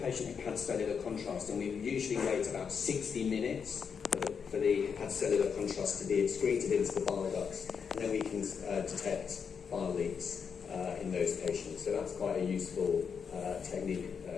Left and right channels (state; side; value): quieter; right; 6.5 dB